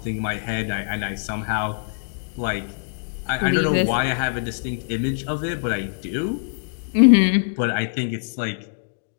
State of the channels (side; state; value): right; silent; digital silence